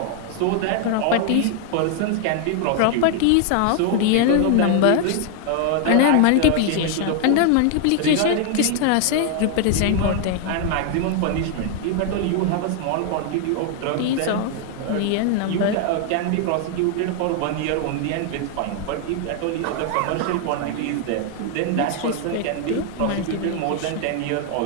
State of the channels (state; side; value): different; both; correlation 0.00